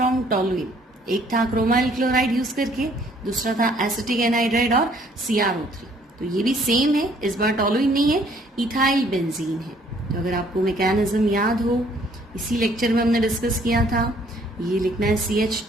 टोलुइन, एक था क्रोमाइल क्लोराइड यूज करके, दूसरा था एसिटिक एनहाइड्राइड और CrO3, तो ये भी सेम है, इस बार टोलुइन नहीं है, इथाइल बेंजीन है। तो अगर आपको मैकेनिज्म याद हो, इसी लेक्चर में हमने डिस्कस किया था, ये लिखना है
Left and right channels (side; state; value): both; normal; correlation 0.62